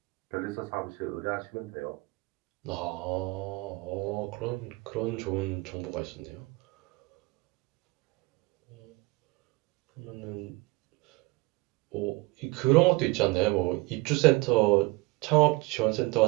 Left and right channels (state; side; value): quieter; left; 23.9 dB